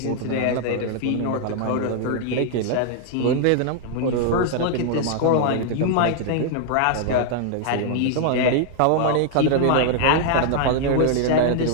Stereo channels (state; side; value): different; both; correlation 0.00